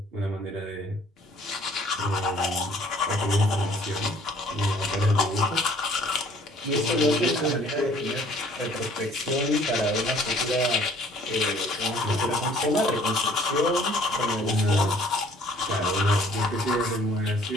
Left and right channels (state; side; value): normal; both; correlation 0.57